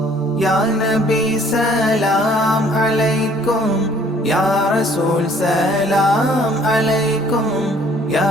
يا نبي سلام عليكم يا رسول سلام عليكم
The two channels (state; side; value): normal; both; correlation 0.58